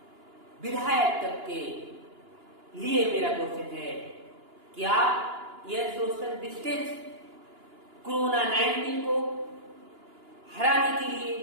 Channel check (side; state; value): left; late; 2.9 ms